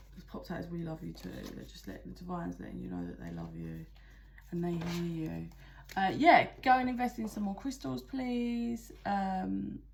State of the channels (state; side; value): identical; both; correlation 1.00